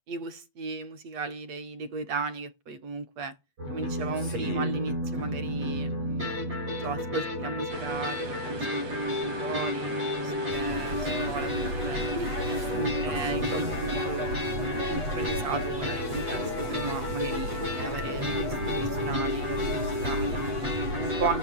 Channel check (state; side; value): late; left; 8.2 ms